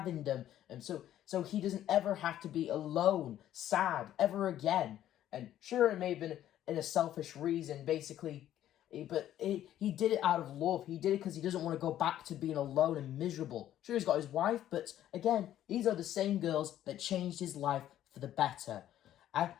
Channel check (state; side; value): quieter; right; 12.0 dB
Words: them. And so he doesn't ever have to be alone, sad, ever again. And sure, it may have been in a selfish reason, basically, but he did it out of love. He did it because he doesn't want to go back to being alone and miserable. Sure, he's got his wife, but again, these are the same girls that changed his life for the better.